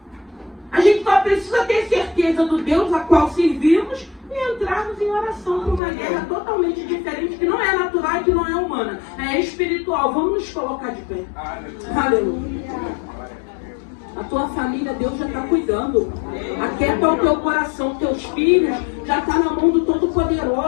A gente só precisa ter certeza do Deus a qual servimos e entrarmos em oração por uma guerra totalmente diferente, que não é natural e que não é humana. É espiritual. Vamos nos colocar de pé. Aleluia. A tua família, Deus já está cuidando. Aquieta o teu coração, teus filhos já está na mão do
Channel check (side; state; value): right; drops out; at 5.8 s